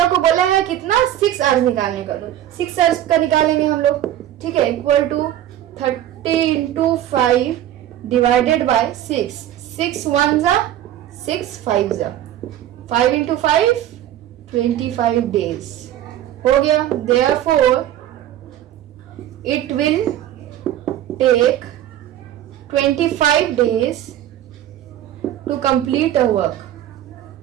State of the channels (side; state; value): left; quieter; 12.2 dB